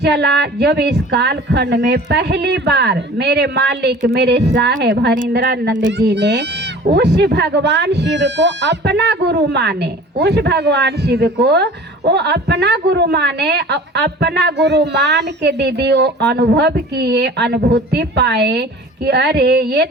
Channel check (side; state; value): both; normal; correlation 0.43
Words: जब इस कालखंड में पहली बार मेरे मालिक मेरे साहेब हरिंद्रानंद जी ने उस भगवान शिव को अपना गुरु माने, उस भगवान शिव को वो अपना गुरु माने, अपना गुरु मान के दीदी वो अनुभव किए, अनुभूति पाए कि अरे ये